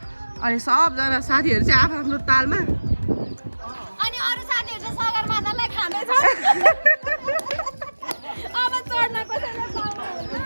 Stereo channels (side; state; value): both; inverted; correlation -1.00